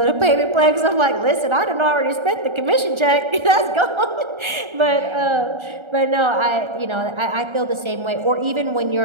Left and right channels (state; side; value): late; left; 1.3 ms